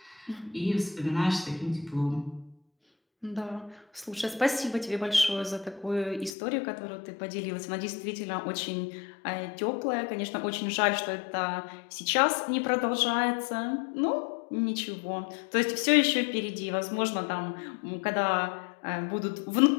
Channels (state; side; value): drops out; right; at 6.3 s